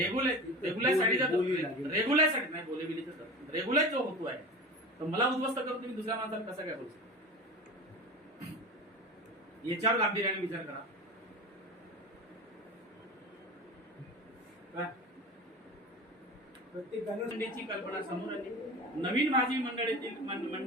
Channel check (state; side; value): normal; both; correlation 0.31